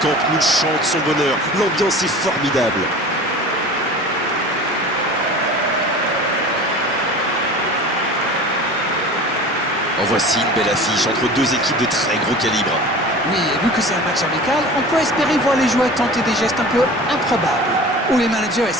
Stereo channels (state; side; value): normal; both; correlation 0.38